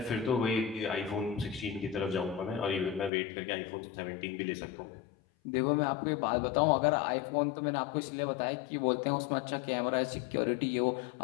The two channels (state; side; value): drops out; right; at 3.1 s